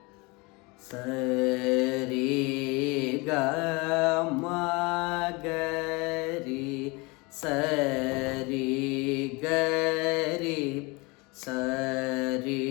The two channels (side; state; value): right; quieter; 26.8 dB